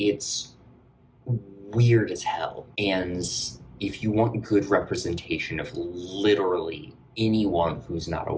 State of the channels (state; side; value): identical; both; correlation 1.00